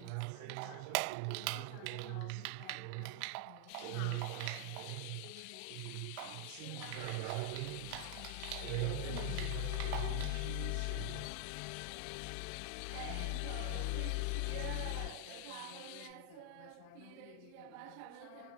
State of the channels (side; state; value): both; different; correlation 0.00